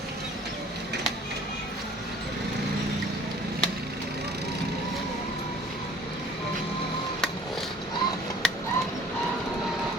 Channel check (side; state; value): both; normal; correlation 0.51